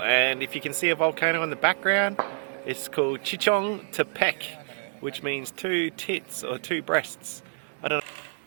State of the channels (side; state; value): left; silent; 60 dB below the other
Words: and if you can see a volcano in the background, it's called Chichontepec, which means two tits or two breasts. I don't